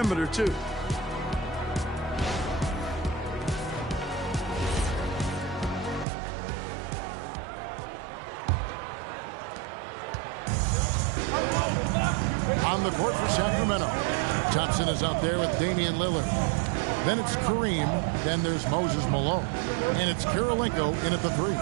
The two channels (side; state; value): left; drops out; at 6.1 s